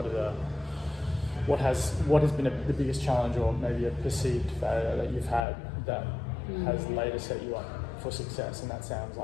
what has been the biggest challenge, or maybe a perceived failure that you've had that has later set you up for success, and that sounds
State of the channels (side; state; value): right; drops out; at 5.5 s